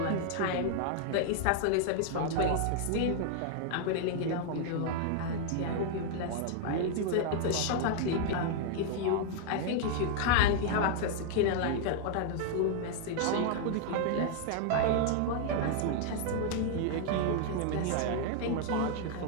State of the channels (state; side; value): different; both; correlation 0.00